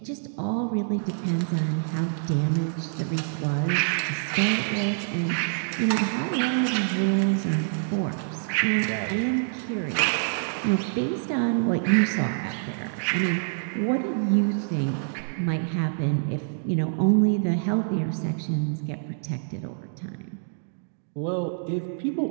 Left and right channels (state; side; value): silent; left; digital silence